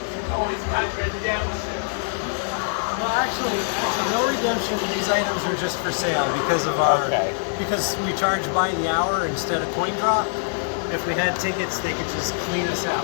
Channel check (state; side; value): silent; right; digital silence